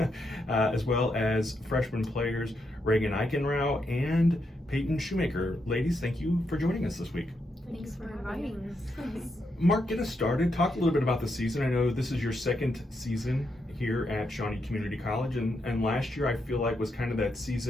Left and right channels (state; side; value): normal; both; correlation 0.81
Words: As well as freshman players Regan Eigenrauch and Payton Shoemaker. Ladies, thank you for joining us this week. Thanks for inviting us. Mark, get us started. Talk a little bit about the season. I know this is your second season here at Shawnee Community College, and last year I feel like was kind of that